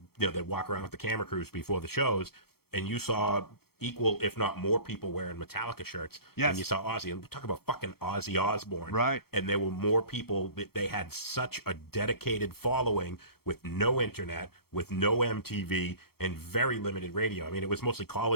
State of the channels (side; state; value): right; late; 0.95 ms